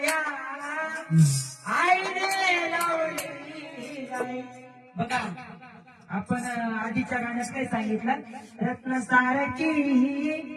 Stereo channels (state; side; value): identical; both; correlation 1.00